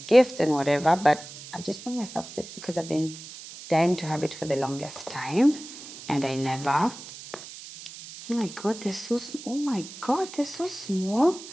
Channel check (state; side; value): noise; right; hiss, 14 dB below the sound